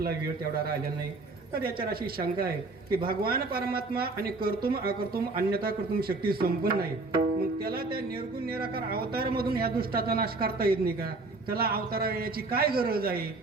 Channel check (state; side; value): quieter; left; 3.5 dB